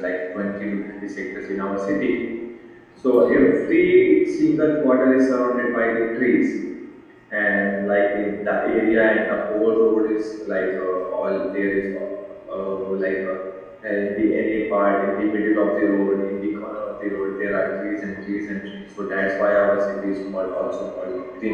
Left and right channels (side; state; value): both; identical; correlation 1.00